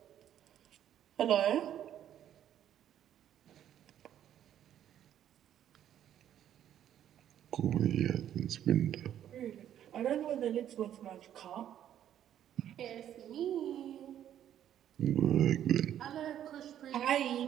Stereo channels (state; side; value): quieter; left; 10.7 dB